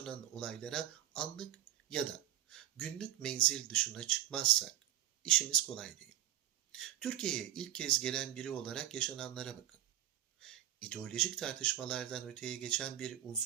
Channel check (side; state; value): left; quieter; 12.3 dB